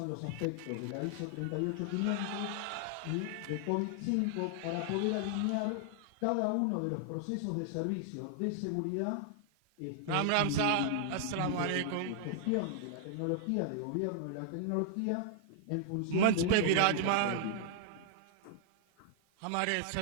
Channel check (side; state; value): both; different; correlation 0.00